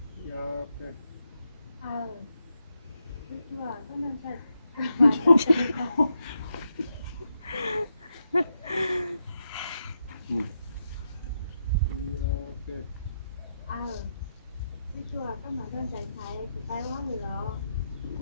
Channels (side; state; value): both; inverted; correlation -0.83